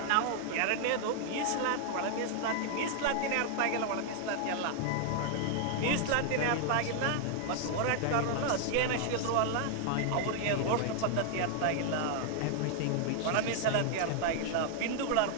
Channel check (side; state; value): both; different; correlation 0.00